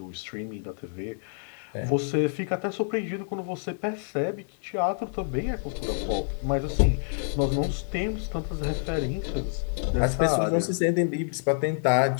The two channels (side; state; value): right; silent; digital silence